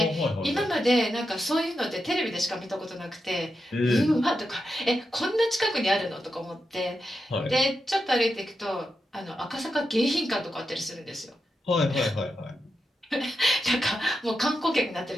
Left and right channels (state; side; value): normal; both; correlation 0.88